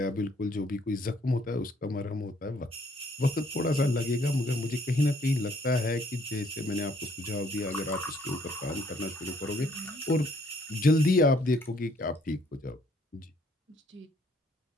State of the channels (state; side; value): normal; both; correlation 0.65